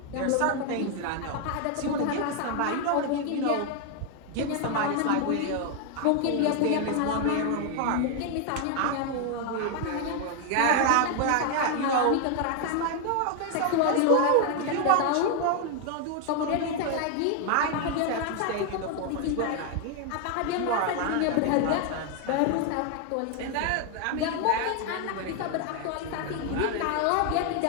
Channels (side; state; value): both; different; correlation 0.01